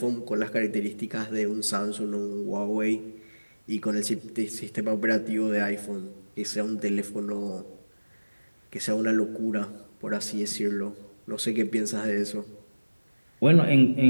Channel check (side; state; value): both; inverted; correlation -1.00